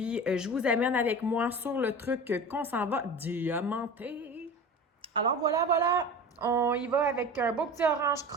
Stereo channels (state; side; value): normal; both; correlation 0.34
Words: je vous amène avec moi sur le truc qu'on s'en va diamanter. Alors, voilà! On y va avec un beau petit orange